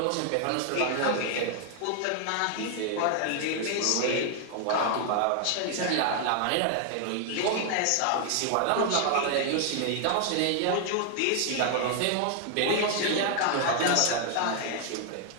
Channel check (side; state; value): both; different; correlation 0.00